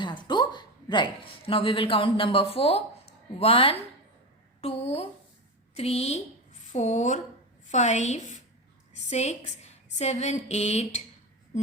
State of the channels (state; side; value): normal; both; correlation 0.19